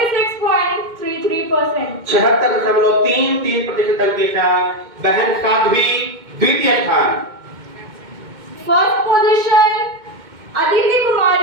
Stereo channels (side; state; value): left; late; 2.2 ms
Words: 76.33% अंक के साथ बहन साध्वी द्वितीय स्थान। First position Aditi